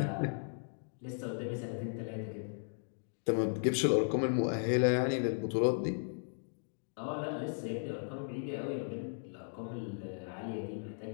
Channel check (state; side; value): silent; right; digital silence